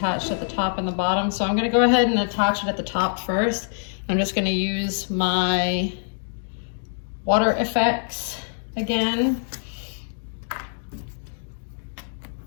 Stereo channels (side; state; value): right; silent; digital silence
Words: at the top and the bottom. So I'm gonna go ahead and attach it at the top first. I'm just gonna use my water effects again.